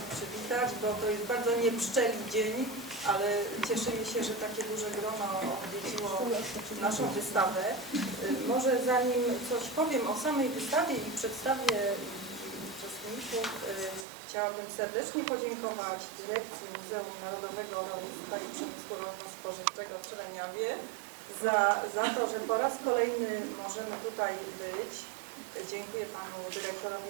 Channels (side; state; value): left; drops out; at 14.1 s